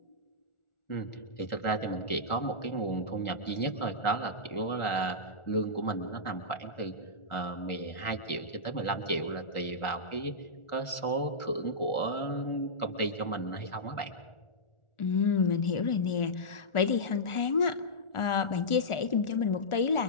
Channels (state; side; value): late; right; 1.4 ms